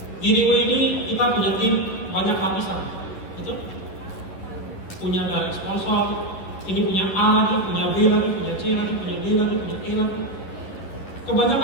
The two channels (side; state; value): right; late; 10 ms